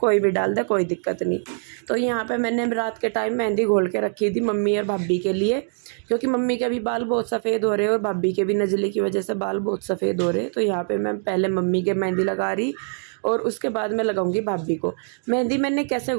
भी डाल दे, कोई दिक्कत नहीं। तो यहाँ पे मैंने रात के टाइम मेहंदी घोल के रखी थी मम्मी और भाभी के लिए, क्योंकि मम्मी के भी बाल बहुत सफ़ेद हो रहे हैं और भाभी के भी नज़ले की वजह से बाल बहुत सफ़ेद हो रहे हैं। तो यहाँ पे मैं पहले मम्मी के मेहंदी लगा रही, और उसके बाद मैं लगाऊंगी भाभी को मेहंदी। मैंने कैसे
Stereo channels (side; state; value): left; silent; 63 dB below the other